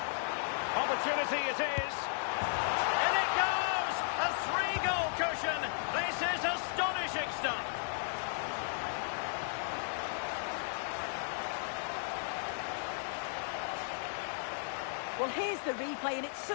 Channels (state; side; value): silent; right; digital silence